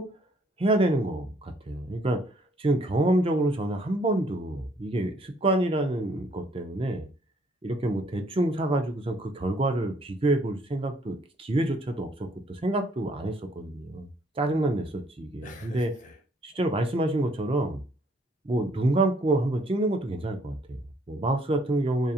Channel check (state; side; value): normal; both; correlation 0.64